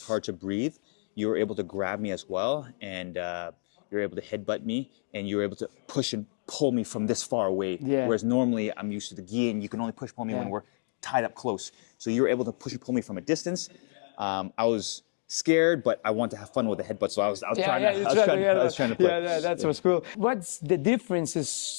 hard to breathe. You were able to grab me as well, and you were able to headbutt me, and you were able to push and pull me from this far away. Yeah. Whereas normally I'm used to the gi, and you can only push pull me when we're tied up close. So you were able to push and pull me from a distance. I was scared, but I wanted to have fun with the headbutt, so I was trying to play. Yeah, that was cool. What's the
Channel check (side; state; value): right; silent; digital silence